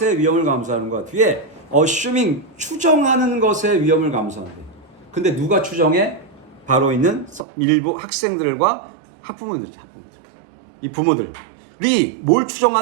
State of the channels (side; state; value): left; drops out; at 7.5 s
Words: 위험을 감수하는 거야. 뒤에 assuming 추정하는 것에 위험을 감수한대. 근데 누가 추정해? 바로 있는 일부 학생들과 학부모들이죠. 이 부모들이 뭘